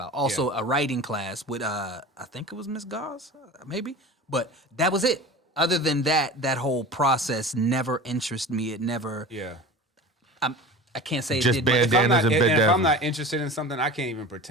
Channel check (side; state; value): both; normal; correlation 0.35